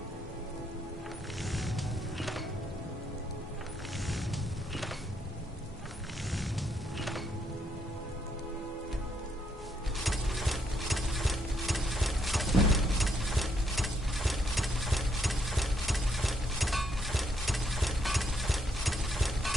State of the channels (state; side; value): normal; both; correlation 0.74